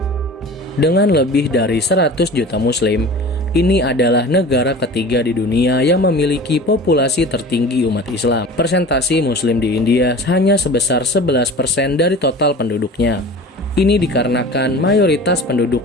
Dengan lebih dari 100 juta Muslim, ini adalah negara ketiga di dunia yang memiliki populasi tertinggi umat Islam. Persentase Muslim di India hanya sebesar 11% dari total penduduknya. Ini dikarenakan mayoritas penduduk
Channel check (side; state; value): both; normal; correlation 0.38